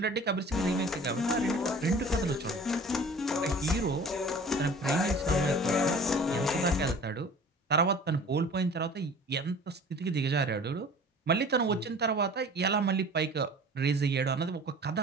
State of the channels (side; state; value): both; normal; correlation 0.44